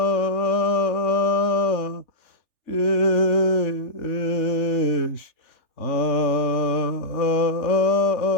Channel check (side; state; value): right; late; 3.4 ms